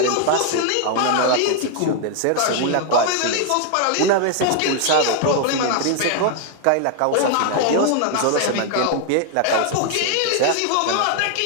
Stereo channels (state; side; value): different; both; correlation 0.00